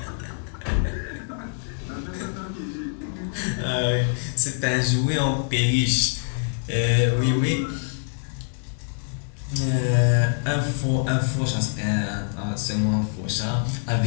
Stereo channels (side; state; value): right; silent; digital silence